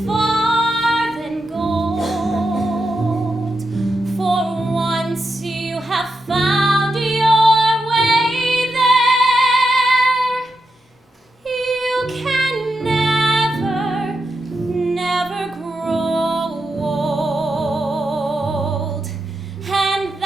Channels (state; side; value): normal; both; correlation 0.86